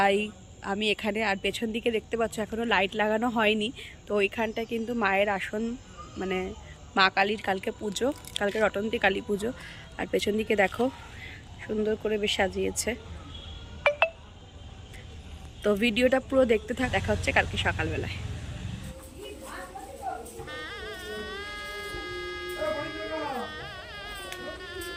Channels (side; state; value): both; identical; correlation 1.00